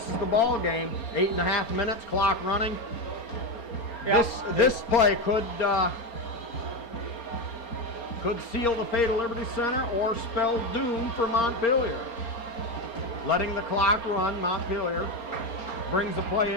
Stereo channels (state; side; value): late; right; 4.3 ms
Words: is the ball game. 8.5 minutes, clock running. Yeah. This play could seal the fate of Liberty Center or spell doom for Montpelier. Letting the clock run, Montpelier brings the play